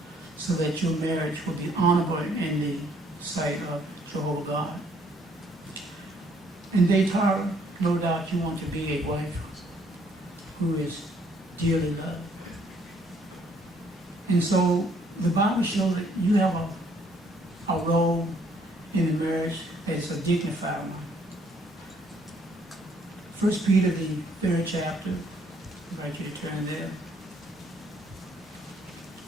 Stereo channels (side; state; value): both; normal; correlation 0.65